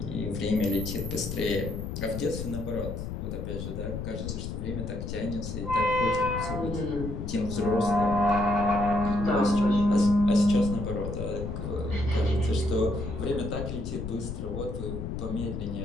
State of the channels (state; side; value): noise; left; rumble, 5 dB below the sound